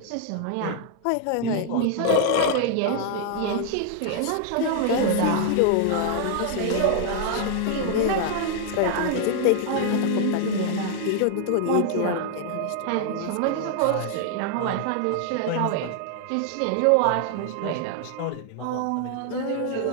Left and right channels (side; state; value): both; different; correlation 0.00